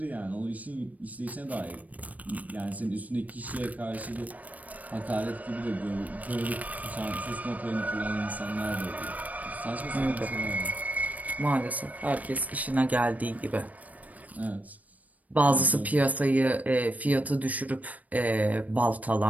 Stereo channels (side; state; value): left; late; 0.073 ms